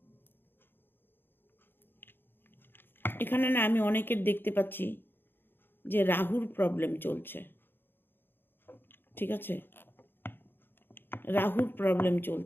এখানে না আমি অনেকের দেখতে পাচ্ছি যে রাহুর প্রবলেম চলছে। ঠিক আছে, রাহুর প্রবলেম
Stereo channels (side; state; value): right; late; 0.10 ms